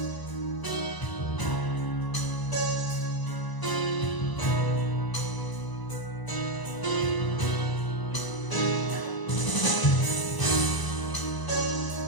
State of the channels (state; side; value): late; right; 1.0 ms